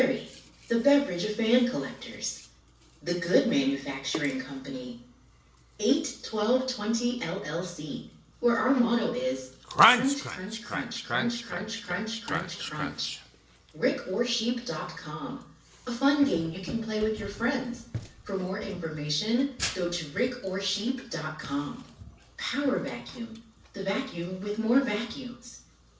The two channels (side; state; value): both; identical; correlation 1.00